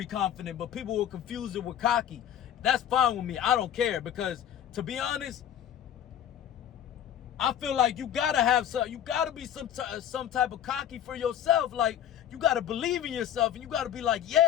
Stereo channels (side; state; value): right; quieter; 10.3 dB